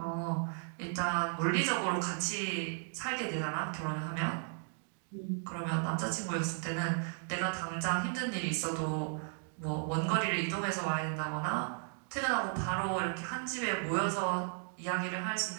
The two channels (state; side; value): silent; left; 54 dB below the other